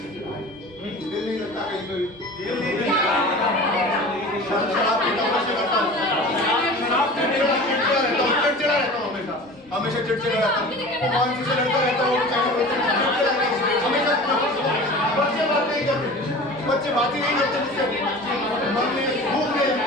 दिल नहीं लगता कहीं पे भी। शराब पीता हूँ, नशे करता हूँ, चिड़चिड़ा रहता हूँ हमेशा चिड़चिड़ा रहता हूँ। भगवान जी से लड़ता रहता हूँ, हमेशा बच्चे बात नहीं करते, बच्चे बात ही नहीं करते मुझसे। मन में भूख नहीं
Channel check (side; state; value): both; normal; correlation 0.38